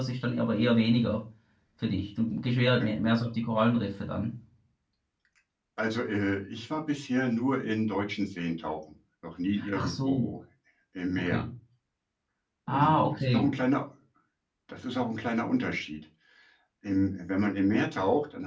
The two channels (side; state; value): both; identical; correlation 1.00